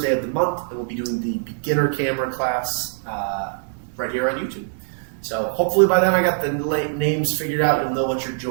of the month, and we'll be doing the beginner camera class right here on YouTube. So hopefully by then I got the names figured out. You'll know what you're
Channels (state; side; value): silent; left; digital silence